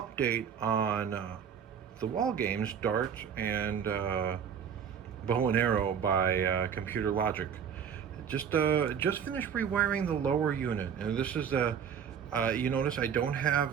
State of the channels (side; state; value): left; quieter; 7.7 dB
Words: on the wall games Dart and Bow and Arrow by Computer Logic. Just finished rewiring the lower unit, and this is the you notice I don't